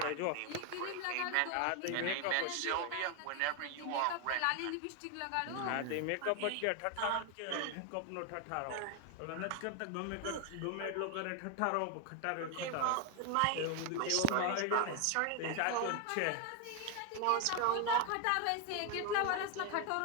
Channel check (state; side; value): different; both; correlation 0.01